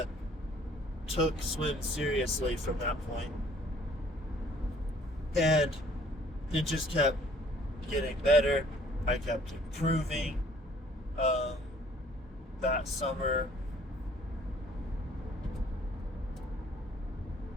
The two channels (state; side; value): normal; both; correlation 0.58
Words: took swim seriously from that point. And it just kept getting better. I kept improving. Um, that summer,